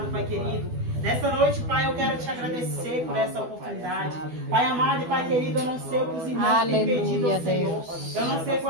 Pai querido. Nessa noite, Pai, eu quero te agradecer por essa oportunidade. Pai amado e Pai querido, eu não sei o que os irmãos têm pedido ao Senhor. Eu não sei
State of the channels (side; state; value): left; late; 12 ms